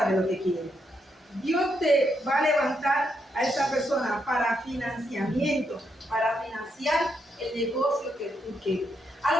de lo que quieres. Dios te va a levantar a esa persona para financiamiento, para financiar el negocio que tú quieres. A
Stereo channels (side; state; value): both; normal; correlation 0.79